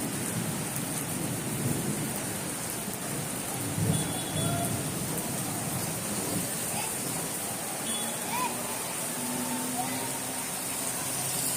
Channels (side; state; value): both; identical; correlation 1.00